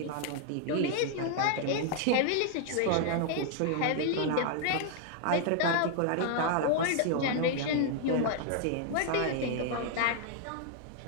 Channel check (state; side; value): different; both; correlation -0.01